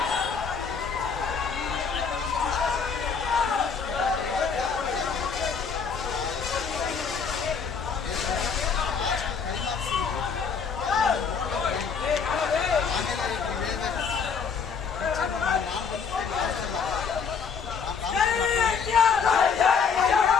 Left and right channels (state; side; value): quieter; right; 6.0 dB